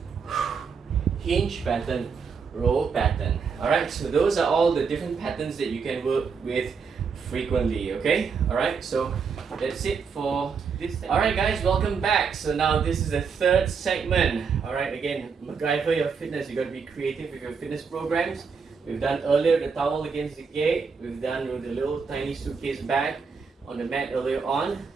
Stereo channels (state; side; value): quieter; left; 5.7 dB